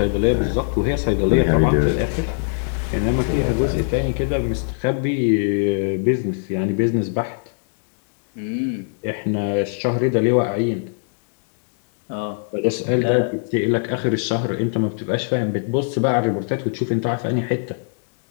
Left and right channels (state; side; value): silent; right; digital silence